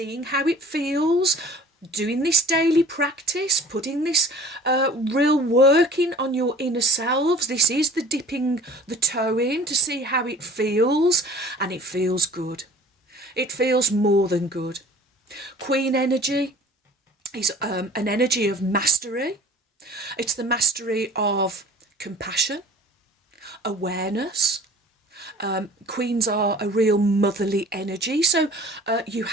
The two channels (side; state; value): both; normal; correlation 0.47